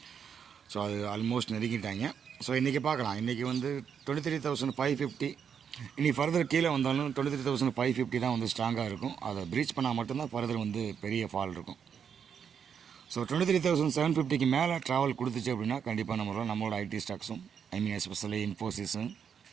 ஸோ அது ஆல்மோஸ்ட் நெருங்கிட்டாங்க. ஸோ இன்றைக்கி பார்க்கலாம். இன்றைக்கி 23,550. இனி ஃபர்தர் கீழே வந்தாலும் 23,550 தான் ஸ்ட்ராங்காக இருக்கும். அதை ப்ரீச் பண்ணால் மட்டும்தான் ஃபர்தர் பெரிய ஃபால் இருக்கும். ஸோ 23,750க்கு மேலே ட்ராவல் கொடுத்துச்சு அப்படின்னா கண்டிப்பாக நம்மளோட ஐடி ஸ்டாக்ஸும், எஸ்பெஷலி இன்ஃபோசிஸும்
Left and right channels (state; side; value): quieter; left; 7.5 dB